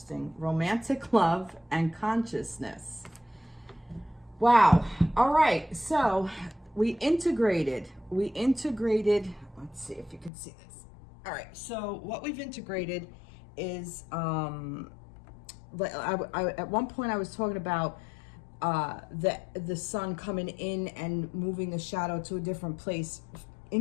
Romantic love and consciousness. Wow. All right. So we integrated, let's see if you can see this. All right. So what we've integrated is, at one point I was talking about the sun coming in and moving the shadow to a different place,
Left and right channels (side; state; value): right; drops out; at 10.3 s